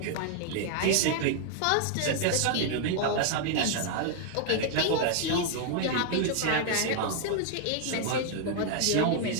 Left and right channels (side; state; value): both; different; correlation 0.00